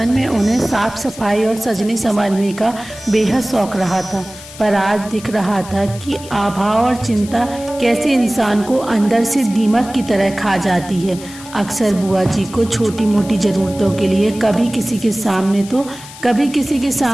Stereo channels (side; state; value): left; noise; hiss, 16 dB below the sound